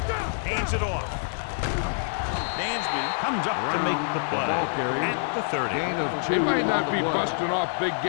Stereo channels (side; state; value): right; silent; digital silence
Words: Hands it off. Dansby comes up to make the play at the 30. They might not be busting off big